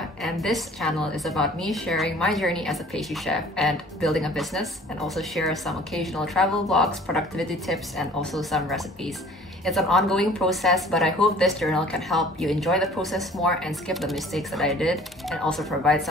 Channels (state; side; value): normal; both; correlation 0.51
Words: And this channel is about me sharing my journey as a pastry chef and building a business, and also share some occasional travel vlogs, productivity tips, and also some recipes. It's an ongoing process, but I hope this journal can help you enjoy the process more and skip the mistakes that I did, and also provide